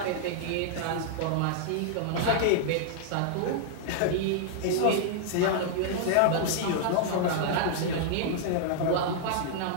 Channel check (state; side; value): different; both; correlation -0.01